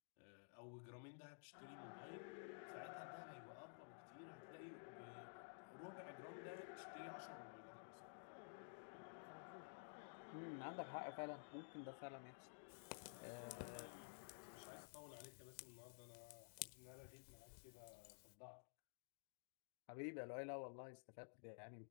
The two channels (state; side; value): silent; right; digital silence